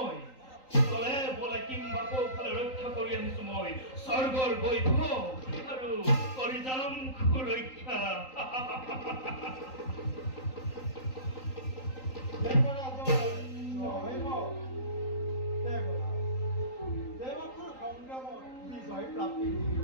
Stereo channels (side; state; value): right; late; 3.8 ms